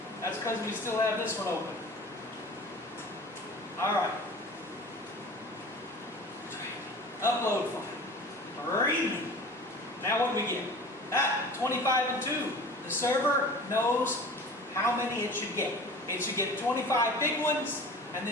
That's because we still have this one open. All right. Upload file. Read me. Now what do we get? 25 and 2. The server knows how many it should get. It should get 25 big ones and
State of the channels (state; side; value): normal; both; correlation 0.40